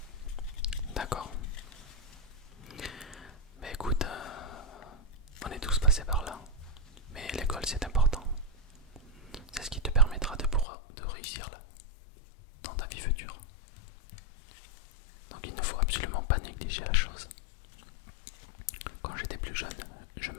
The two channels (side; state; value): right; drops out; at 10.7 s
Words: d'accord. Mais écoute, on est tous passés par là. Mais l'école c'est important. C'est ce qui te permettra de réussir là, dans ta vie future. Donc il ne faut absolument pas négliger la chose. Quand j'étais plus jeune, je